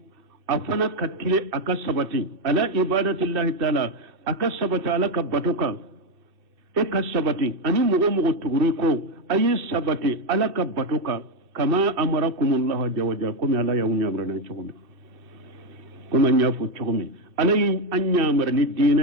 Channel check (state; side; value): late; left; 2.6 ms